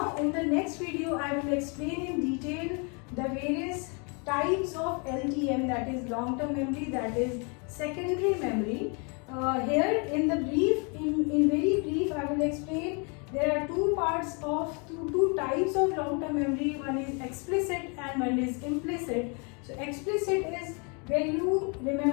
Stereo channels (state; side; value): quieter; right; 34.6 dB